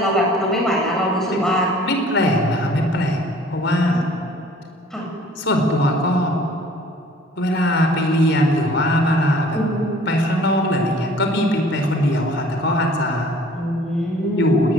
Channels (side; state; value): both; normal; correlation 0.52